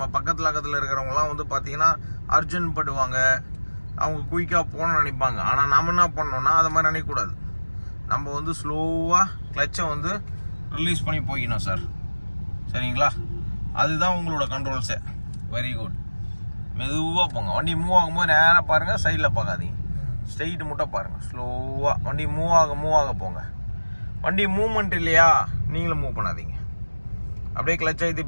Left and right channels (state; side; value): inverted; both; correlation -1.00